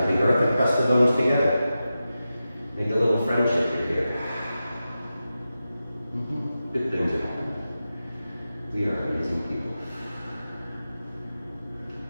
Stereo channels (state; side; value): inverted; both; correlation -0.92